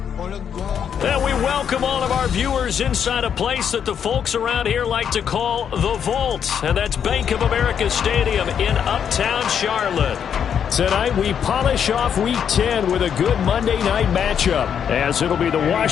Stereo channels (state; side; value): quieter; right; 8.1 dB